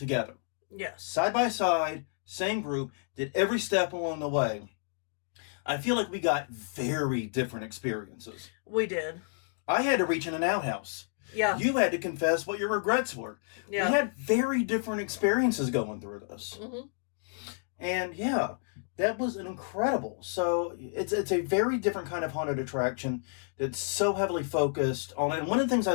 yes, side by side, same group, did every step along the way, I feel like we got very different experiences. We did. I had to reach in an outhouse. Yeah. You had to confess what your regrets were. Yeah. We had very different experiences going through this. Mm-hmm. And yeah, that was incredible. So it's a very different kind of haunted attraction that's so heavily focused on, and one of the things I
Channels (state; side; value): silent; right; 58 dB below the other